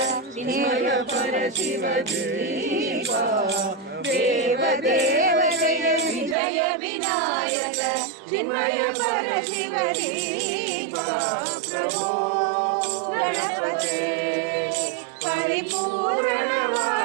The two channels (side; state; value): left; drops out; at 6.4 s